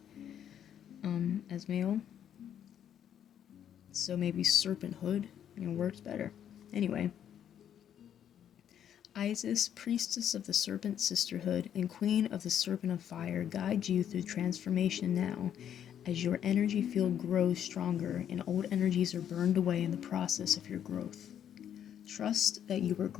as male. So maybe Serpenthood, works better. Anyway. Isis, Priestess of the Serpent Sisterhood and Queen of the Serpent of Fire, guide you through transformation now, as your energy field grows stronger and old energies are burned away in the process of your growth. Trust that you are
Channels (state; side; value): quieter; right; 9.6 dB